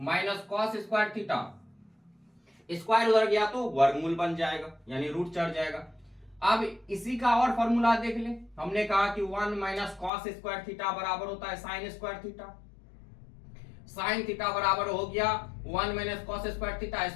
cos square theta. Square उधर गया तो वर्गमूल बन जाएगा, यानी रूट चढ़ जाएगा। अब इसी का और फॉर्मूला देख ले। हमने कहा कि 1 माइनस कॉस स्क्वायर थीटा बराबर होता है sign square theta. Sine theta बराबर हो गया 1 minus cos square theta,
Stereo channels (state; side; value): drops out; right; at 10.1 s